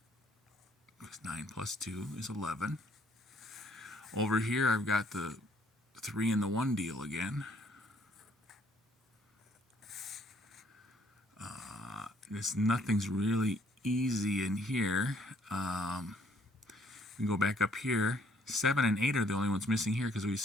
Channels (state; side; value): normal; both; correlation 0.64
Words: because 9 plus 2 is 11. Over here, I've got the 3 and the 1 deal again. Nothing's really easy in here. We can go back up here. 7 and 8 are the only ones missing here because we